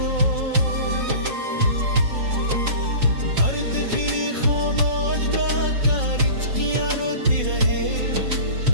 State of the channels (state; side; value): late; left; 5.6 ms